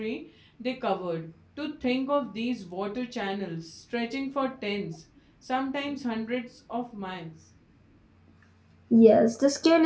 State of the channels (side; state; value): both; identical; correlation 1.00